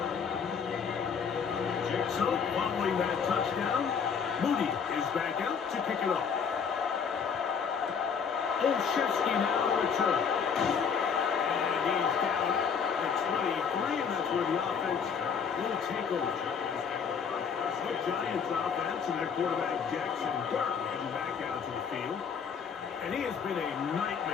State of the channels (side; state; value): right; quieter; 6.5 dB